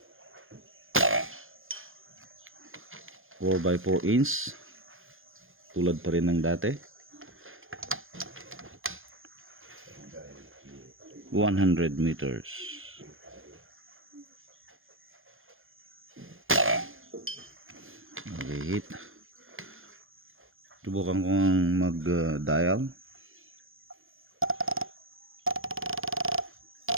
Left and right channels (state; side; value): late; left; 0.59 ms